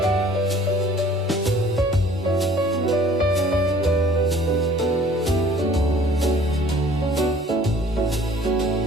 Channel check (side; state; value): both; normal; correlation 0.53